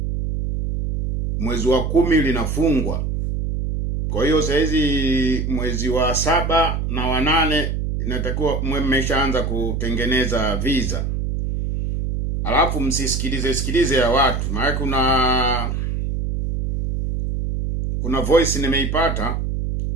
mwezi wa 10 linafungwa. Kwa hiyo saa hizi mwezi wa 7 na wa 8 inatakiwa mmeshaanza kutengeneza visa. Alafu msisikilize ya watu, maana kuna voice nimeipata,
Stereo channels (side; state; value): right; noise; hum, 1 dB below the sound